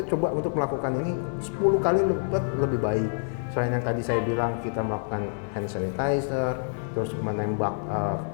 coba untuk melakukan ini 10 kali lebih baik. Selain yang tadi saya bilang, kita melakukan hand sanitizer, terus menembak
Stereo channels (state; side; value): silent; right; 60 dB below the other